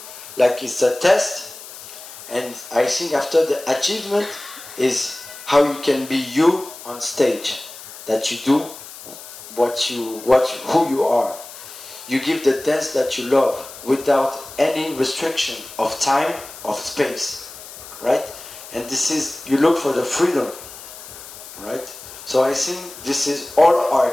like it's a test, and I think after the achievement is how you can be you on stage, that you do who you are. You give the dance that you love without any restriction of time, of space, right? And this is, you look for the freedom, right? So I think this is, all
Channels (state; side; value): noise; left; hiss, 15 dB below the sound